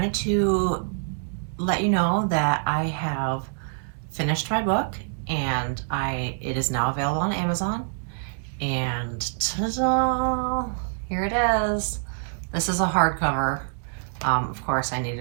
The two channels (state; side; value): silent; left; 61 dB below the other